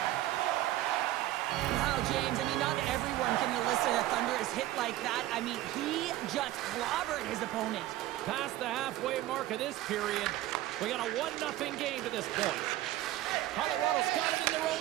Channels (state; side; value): quieter; left; 15.1 dB